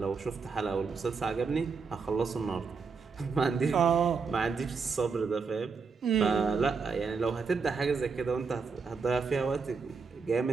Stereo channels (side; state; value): left; quieter; 5.1 dB